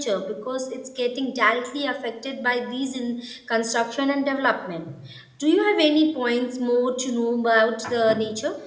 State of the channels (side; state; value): both; identical; correlation 1.00